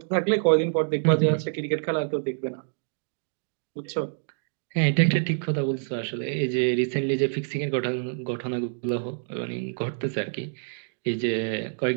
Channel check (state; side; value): silent; left; digital silence